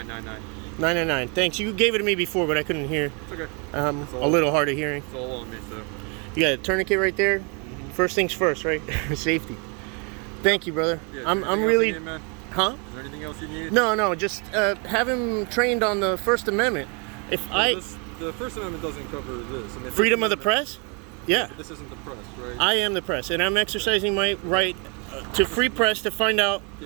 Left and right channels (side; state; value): left; quieter; 34.1 dB